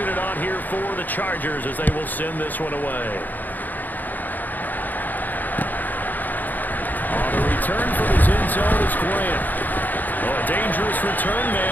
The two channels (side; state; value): right; late; 0.085 ms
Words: on here for the Chargers as they will send this one away. On the return from his end zone is Grant. Oh, a dangerous return